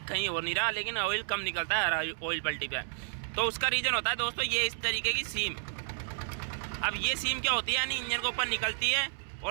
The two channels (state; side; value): silent; left; 57 dB below the other